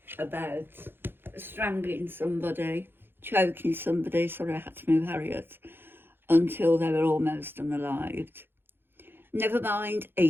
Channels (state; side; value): late; left; 0.10 ms